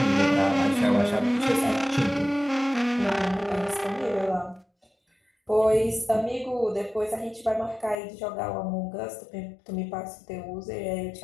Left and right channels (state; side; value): drops out; right; at 8.0 s